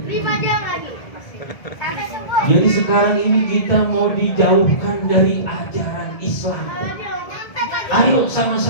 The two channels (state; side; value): late; right; 1.7 ms